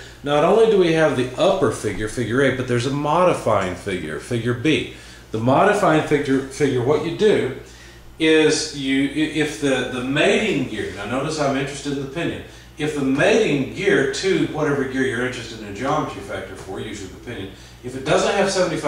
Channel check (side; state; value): both; identical; correlation 1.00